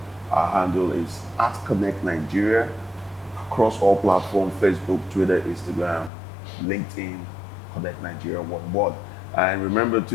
Our handle is @ConnectNigeria across all platforms: Facebook, Twitter, Instagram, LinkedIn. Connect Nigeria one word. And remember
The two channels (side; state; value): right; drops out; at 6.1 s